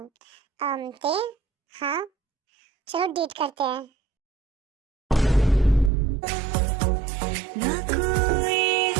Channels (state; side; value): drops out; left; at 5.9 s